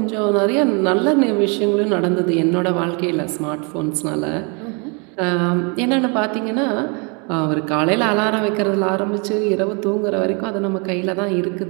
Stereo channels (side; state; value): left; quieter; 33.9 dB